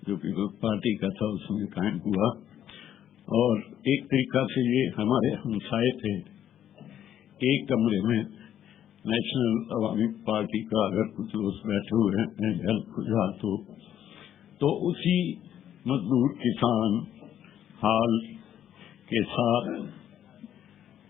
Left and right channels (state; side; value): quieter; right; 10.6 dB